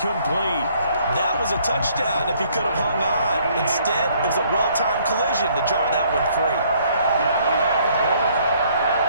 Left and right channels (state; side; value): inverted; both; correlation -0.63